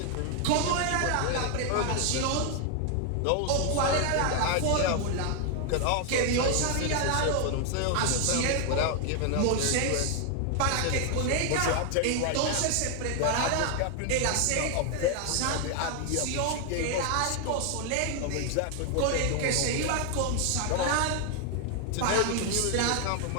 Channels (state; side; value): different; both; correlation 0.00